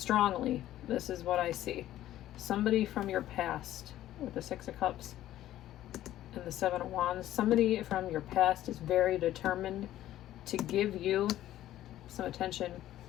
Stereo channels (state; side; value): quieter; right; 13.4 dB